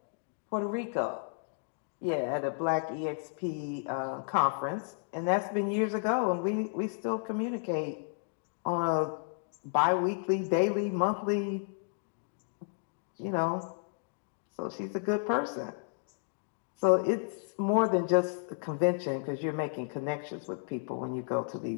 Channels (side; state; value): right; silent; digital silence